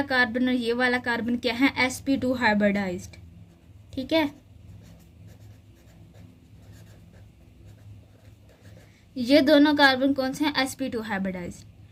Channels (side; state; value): both; identical; correlation 1.00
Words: कार्बन और ये वाला कार्बन क्या है, sp2 हाइब्रिडाइज्ड, ठीक है। ये दोनों कार्बन कौन से हैं, sp2 हाइब्रिडाइज्ड।